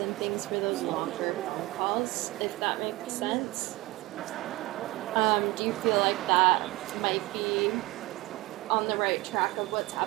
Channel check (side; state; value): left; quieter; 20.8 dB